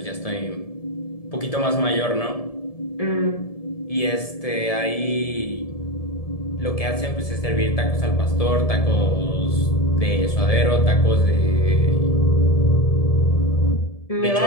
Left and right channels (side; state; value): right; late; 1.7 ms